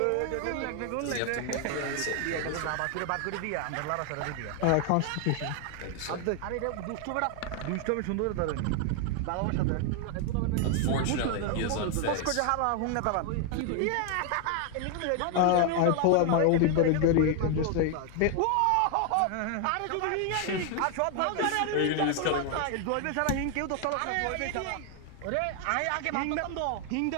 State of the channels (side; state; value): both; different; correlation 0.00